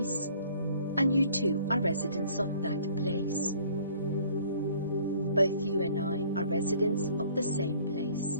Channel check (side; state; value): both; inverted; correlation -0.55